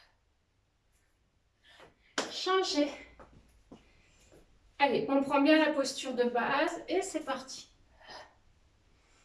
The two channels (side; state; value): both; identical; correlation 1.00